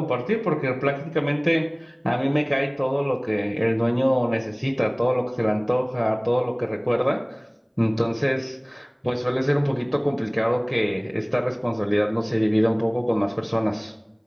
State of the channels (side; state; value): both; identical; correlation 1.00